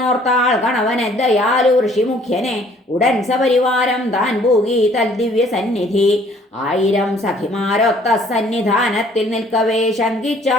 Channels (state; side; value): normal; both; correlation 0.59